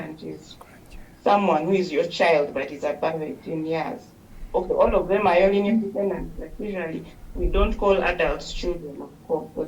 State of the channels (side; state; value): both; identical; correlation 1.00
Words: is someone who is your child, but is above 18 years. Okay, all of them are your linear descendants, but usually we don't call adults children, of course, so